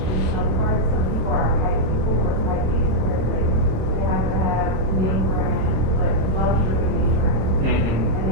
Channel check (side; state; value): left; late; 27 ms